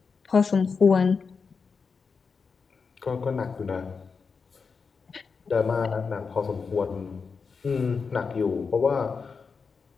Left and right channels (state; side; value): quieter; right; 5.2 dB